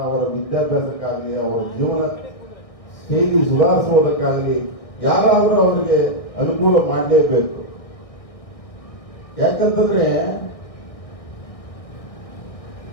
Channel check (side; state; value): right; late; 1.6 ms